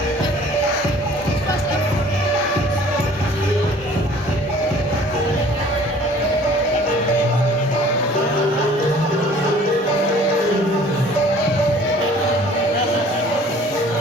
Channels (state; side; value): normal; both; correlation 0.51